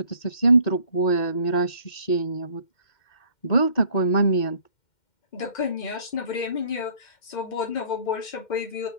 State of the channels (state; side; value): late; right; 2.1 ms